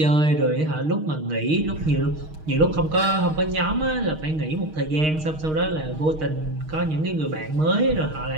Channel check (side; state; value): left; late; 6.4 ms